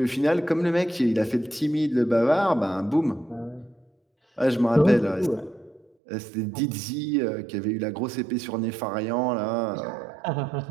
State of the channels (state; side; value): drops out; left; at 5.9 s